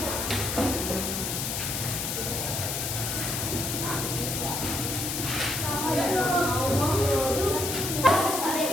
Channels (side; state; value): left; noise; hiss, 2 dB below the sound